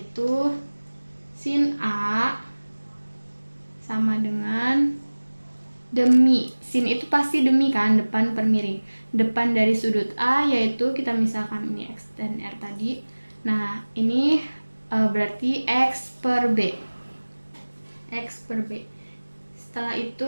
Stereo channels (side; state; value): both; inverted; correlation -1.00